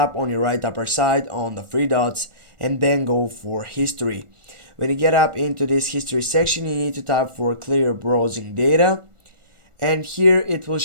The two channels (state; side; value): late; left; 1.4 ms